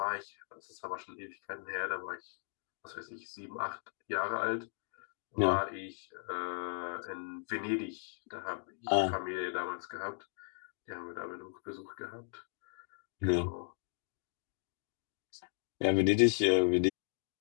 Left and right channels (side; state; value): right; silent; digital silence